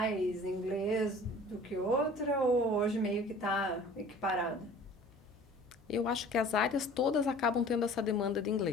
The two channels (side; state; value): left; noise; hum, 27 dB below the sound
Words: inglês do que outra, ou hoje meio que está equiparada? Eu acho que as áreas todas acabam tendo essa demanda de